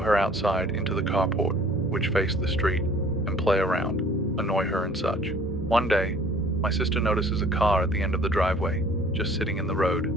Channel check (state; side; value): normal; both; correlation 0.52